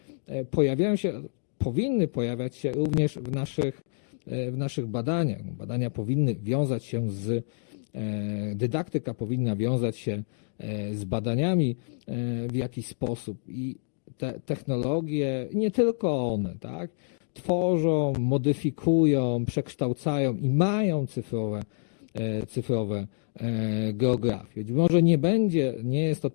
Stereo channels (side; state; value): right; silent; 60 dB below the other